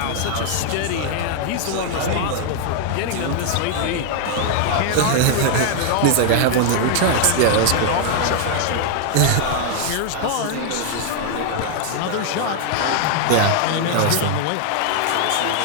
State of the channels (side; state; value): both; different; correlation 0.00